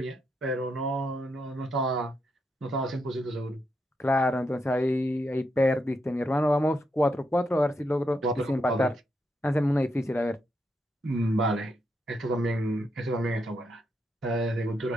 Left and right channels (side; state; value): both; normal; correlation 0.81